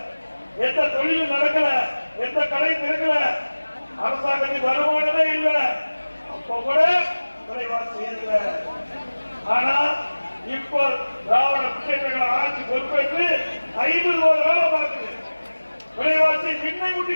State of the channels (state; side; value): inverted; both; correlation -1.00